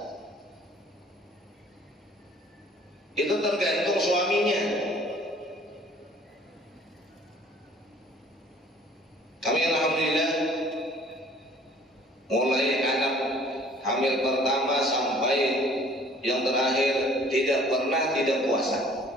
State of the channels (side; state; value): both; normal; correlation 0.54